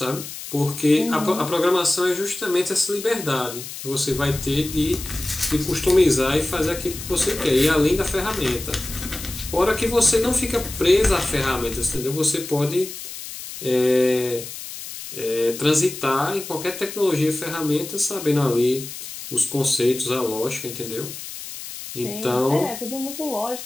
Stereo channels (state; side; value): noise; left; hiss, 10 dB below the sound